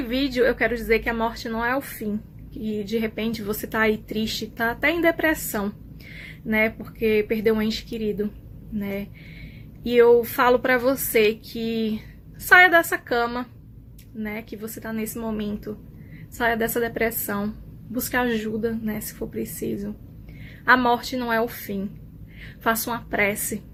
eu quero dizer que a morte não é o fim. E de repente você tá aí triste, tá até em depressão, né? Porque perdeu um ente querido, né? E eu falo pra você que saia dessa cama, né? Que você tá nesse momento. Saia dessa depressão. Busque ajuda, né? Se for preciso. A morte não é o fim. Faça uma prece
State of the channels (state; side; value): identical; both; correlation 1.00